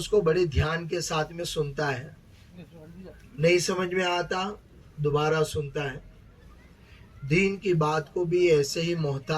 کو بڑے دھیان کے ساتھ میں سنتا ہے. نہیں سمجھ میں آتا دوبارہ سنتا ہے. دین کی بات کو بھی ایسے ہی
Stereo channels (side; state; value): both; identical; correlation 1.00